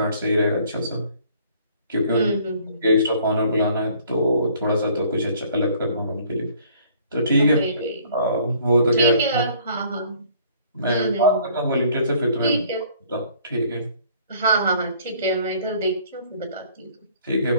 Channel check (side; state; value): both; inverted; correlation -0.58